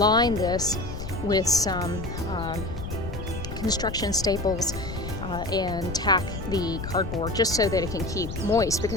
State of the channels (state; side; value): noise; left; rumble, 7 dB below the sound